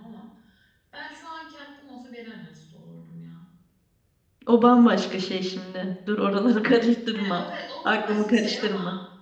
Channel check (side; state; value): both; identical; correlation 1.00